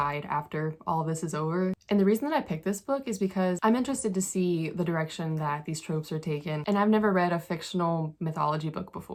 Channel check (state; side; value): identical; both; correlation 1.00